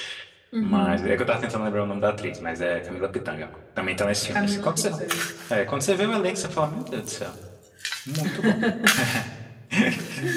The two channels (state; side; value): identical; both; correlation 1.00